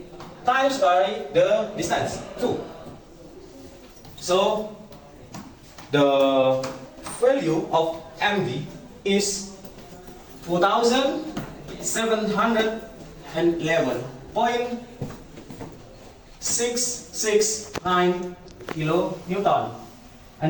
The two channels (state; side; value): identical; both; correlation 1.00